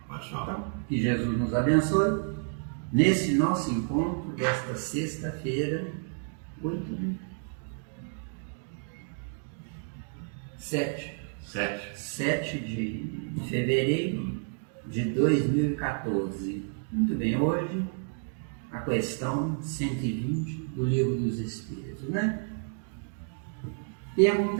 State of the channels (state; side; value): silent; left; 58 dB below the other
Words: Pode falar. Então, que Jesus nos abençoe nesse nosso encontro desta sexta-feira, 7 de fevereiro de 2014. Muito bem, hoje a questão 120 do Livro dos Espíritos, né?